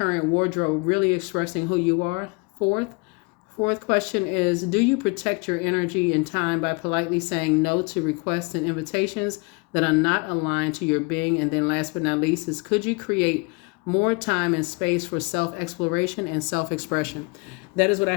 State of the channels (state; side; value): quieter; right; 30.3 dB